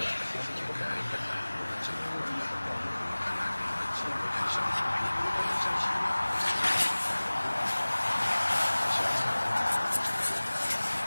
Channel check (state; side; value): inverted; both; correlation -1.00